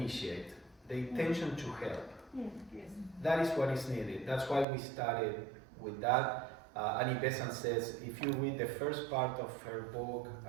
The intention to help. Yes. That is what is needed. That's why we started with that. Annie Besant says, if you read the first part of her book,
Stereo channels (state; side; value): drops out; left; at 4.7 s